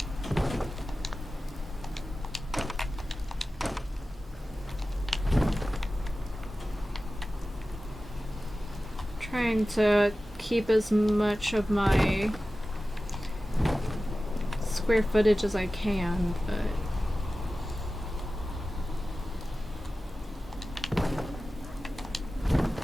Trying to keep as much of my square footage as I can, but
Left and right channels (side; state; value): both; normal; correlation 0.95